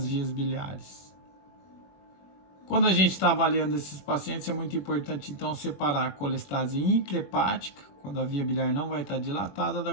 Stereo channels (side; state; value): right; late; 21 ms